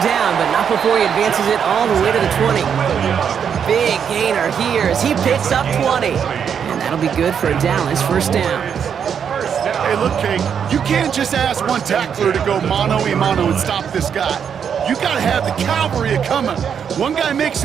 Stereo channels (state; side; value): quieter; left; 7.6 dB